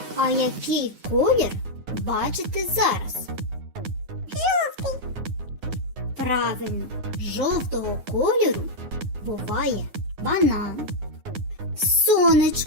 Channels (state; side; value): late; left; 9.5 ms